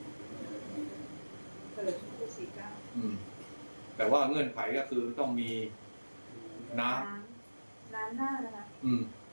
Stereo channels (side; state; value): both; inverted; correlation -1.00